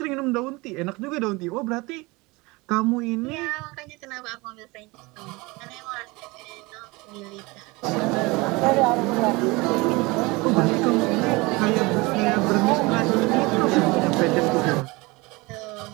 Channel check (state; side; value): quieter; left; 24.1 dB